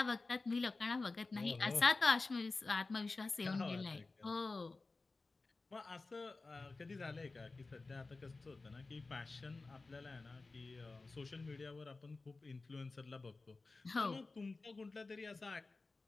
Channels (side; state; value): right; quieter; 3.6 dB